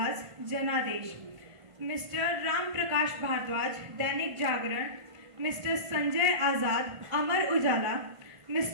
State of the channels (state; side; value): late; left; 1.5 ms